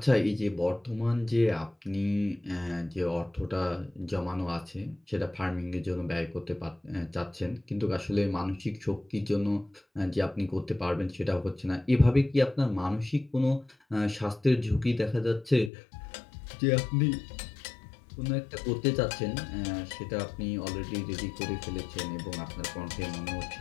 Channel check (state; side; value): drops out; right; at 15.7 s